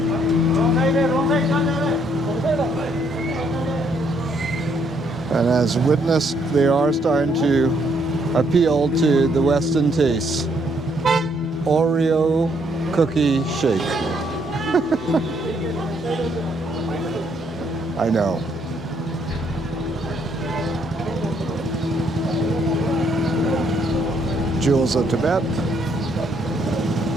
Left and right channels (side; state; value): both; normal; correlation 0.70